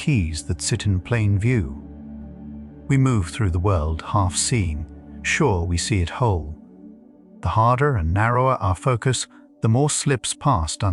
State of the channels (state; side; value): identical; both; correlation 1.00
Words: that sit in plain view. We move through the world half seeing, sure we see it whole. The harder and narrower our focus, the more slips past